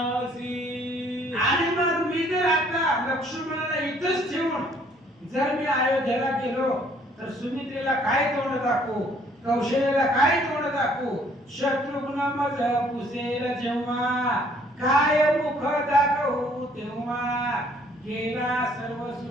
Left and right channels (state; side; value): normal; both; correlation 0.61